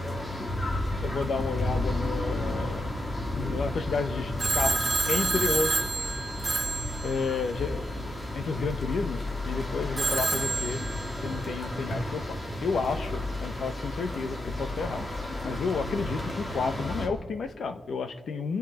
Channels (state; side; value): normal; both; correlation 0.84